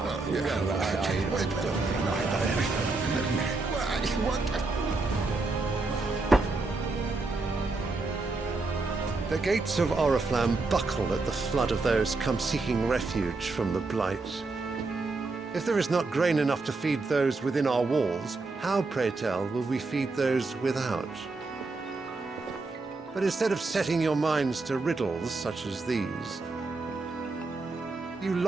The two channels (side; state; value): left; quieter; 3.6 dB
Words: The gates of Oriflamme buckle at the flood of those come seeking refuge from the Blight. If there is not grain enough to feed those within our walls, how, pray tell, will we feed those without? But instead of setting your minds to riddles such as these, you